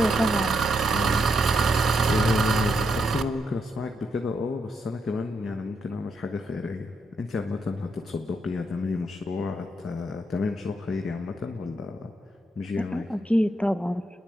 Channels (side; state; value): both; normal; correlation 0.80